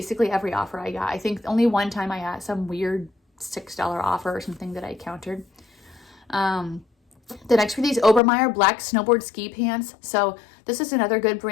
every offer I got. I think only one time I got some weird $6 offer or something that I countered. The next were these Obermeyer black snowboard ski pants. So this is another good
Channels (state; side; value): drops out; right; at 8.2 s